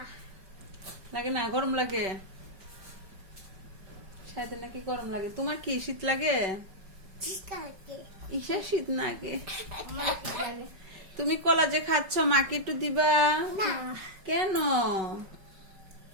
লাগে না? গরম লাগে? শায়দের নাকি গরম লাগে। তোমার কি শীত লাগে? ইসের শীত লাগে। তুমি কলা যে খাচ্ছ মাকে একটু দিবা? কেন?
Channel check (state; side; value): late; left; 5.3 ms